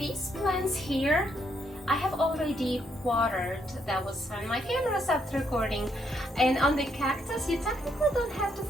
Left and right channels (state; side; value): normal; both; correlation 0.74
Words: plants here, I have already watered. That was when my camera stopped recording. And on the cactus, you technically don't have to